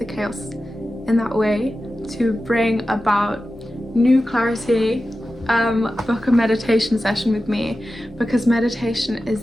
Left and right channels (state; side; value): normal; both; correlation 0.93